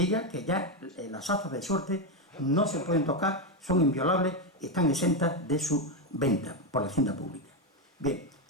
que ya las azas de suerte no se pueden tocar, son inviolables y están exentas de su venta por la hacienda pública. Bien,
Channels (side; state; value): both; normal; correlation 0.08